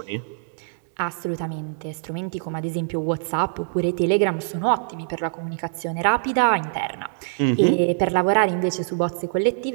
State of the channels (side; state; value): left; silent; digital silence